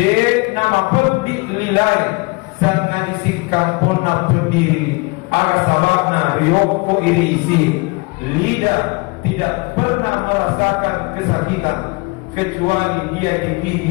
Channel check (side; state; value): right; quieter; 27.6 dB